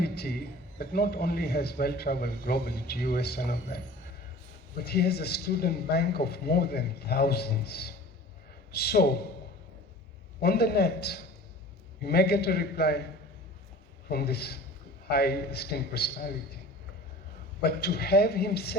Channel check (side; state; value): both; normal; correlation 0.42